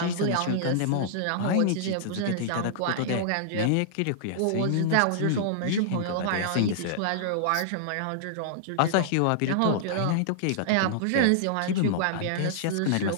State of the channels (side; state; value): both; different; correlation -0.01